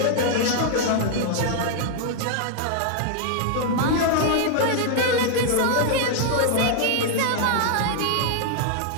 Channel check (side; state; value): both; different; correlation -0.01